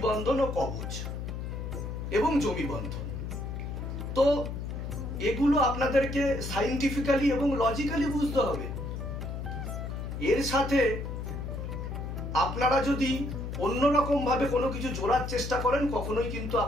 বন্ধন ও কবচ এবং জমি বন্ধন। তো এগুলো আপনাদেরকে সাইন্টিফিক্যালি এবং লজিক্যালি বুঝতে হবে। এর সাথে আপনারা যদি অন্যরকম ভাবে কোনো কিছু জোড়ার চেষ্টা করেন, কখনোই কিন্তু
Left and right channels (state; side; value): noise; left; hum, 5 dB below the sound